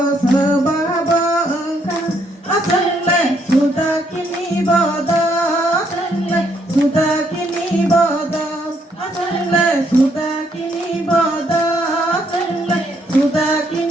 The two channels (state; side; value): normal; both; correlation 0.72